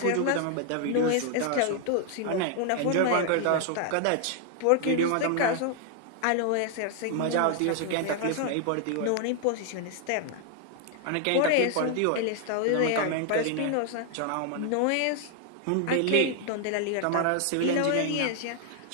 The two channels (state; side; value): different; both; correlation 0.00